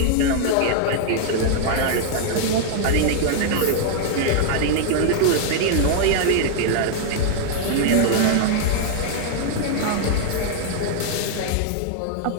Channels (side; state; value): both; different; correlation -0.01